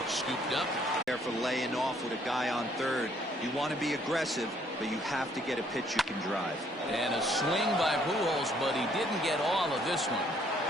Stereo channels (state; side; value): normal; both; correlation 0.65